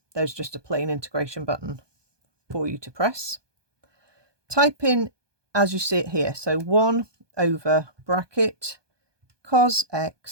there's just a plain integration button for you to press. Type in as you see it here, so 1 over bracket cos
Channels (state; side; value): late; left; 1.2 ms